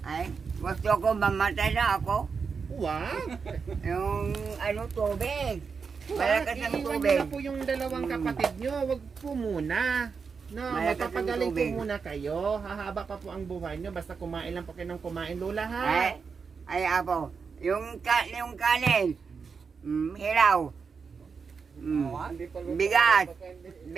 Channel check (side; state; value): left; quieter; 5.5 dB